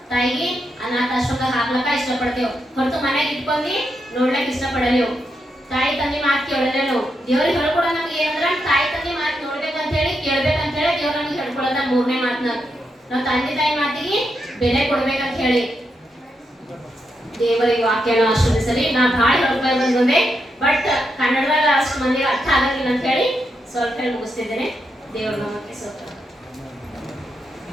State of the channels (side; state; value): both; normal; correlation 0.83